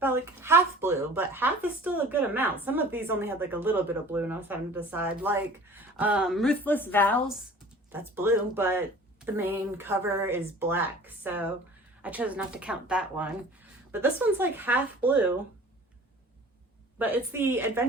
like half blue, but half is still a good amount. Some of these only had like a little bit of blue, and I was having to decide. Like Ruthless Vows, that's blue, but the main cover is black, so I chose not to count that one. But this one's like half blue, but it's the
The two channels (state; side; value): normal; both; correlation 0.45